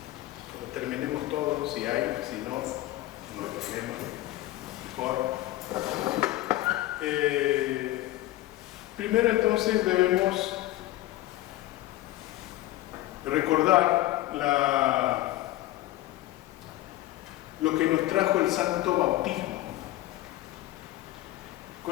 cuando terminemos todo, si hay, si no, no hay problema, mejor. Primero entonces debemos recordar lo que nos trajo el santo bautismo.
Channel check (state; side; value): quieter; right; 16.3 dB